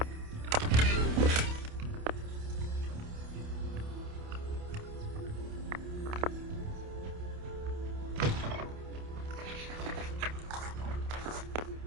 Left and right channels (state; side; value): late; left; 28 ms